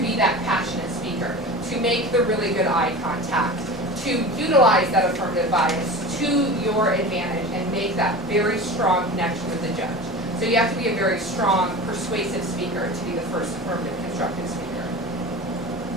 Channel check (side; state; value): both; normal; correlation 0.33